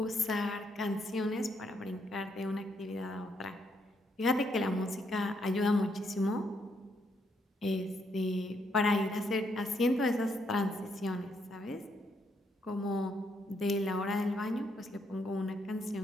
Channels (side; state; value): both; normal; correlation 0.75